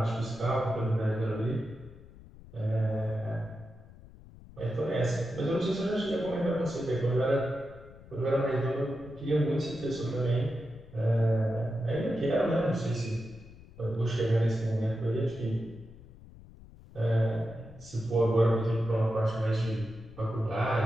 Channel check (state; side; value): noise; left; rumble, 20 dB below the sound